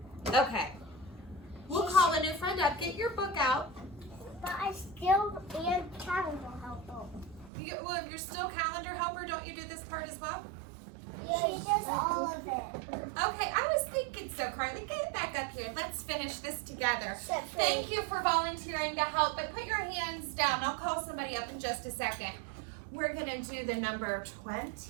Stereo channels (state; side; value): drops out; left; at 7.5 s